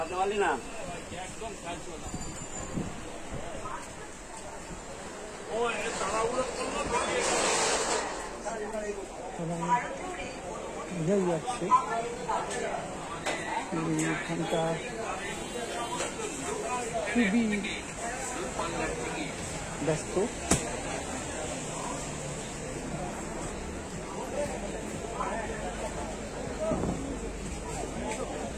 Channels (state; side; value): identical; both; correlation 1.00